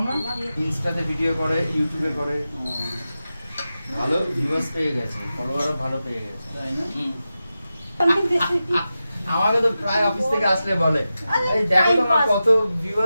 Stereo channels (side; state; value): both; inverted; correlation -0.92